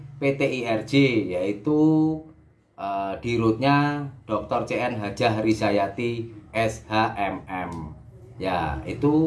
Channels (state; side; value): identical; both; correlation 1.00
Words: PT IRJ, yaitu dirutnya Dr. CN Hajah Rizayati SHMM. Ya,